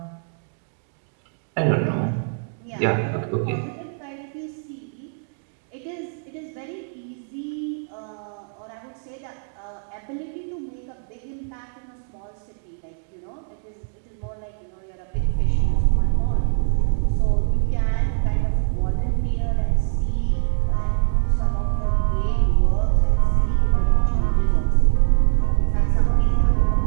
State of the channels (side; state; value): left; silent; digital silence